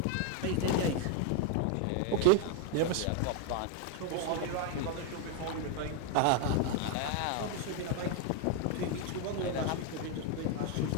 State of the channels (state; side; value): different; both; correlation 0.00